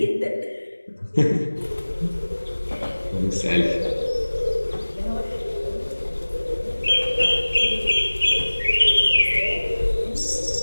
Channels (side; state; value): both; inverted; correlation -1.00